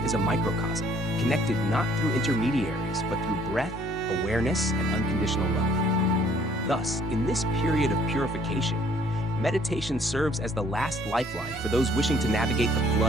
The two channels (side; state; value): both; normal; correlation 0.60